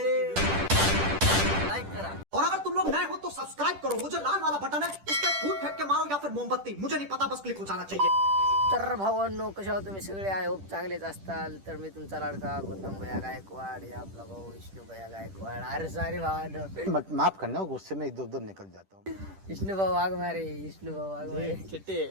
और अगर तुम लोग नए हो तो सब्सक्राइब करो, वो जो लाल वाला बटन है उस पर फूट फेंक के मारो या फिर मोमबत्ती, मुझे नहीं पता, बस क्लिक हो जाना चाहिए। तर भावांनो, कशा आहात तुम्ही सगळे? आय होप चांगलेच असताल. तर मी तुमचा लाडका गौतम भैया गायकवाड, हे आपला भाऊ विष्णू भैया गायकवाड. अरे सारे भावांनो, माफ करना, गुस्से में इधर उधर निकल जाता हूँ. विष्णू भाऊ वाघमारे, विष्णू भाऊ वाघमारे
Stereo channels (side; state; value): left; late; 10 ms